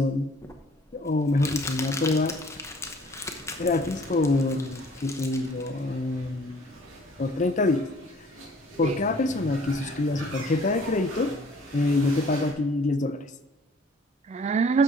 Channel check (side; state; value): both; normal; correlation 0.54